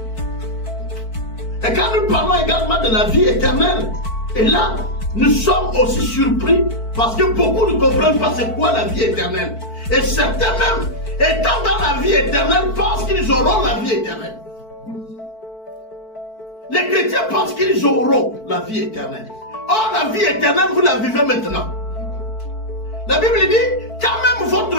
Et quand nous parlons également de la vie éternelle, et là, nous sommes aussi surpris parce que beaucoup ne comprennent pas c'est quoi la vie éternelle. Et certains même, étant dans la vie éternelle, pensent qu'ils auront la vie éternelle. Les chrétiens pensent qu'ils auront la vie éternelle. Or, la vie éternelle, vous la vivez maintenant. La Bible dit, quand même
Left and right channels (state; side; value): late; right; 4.5 ms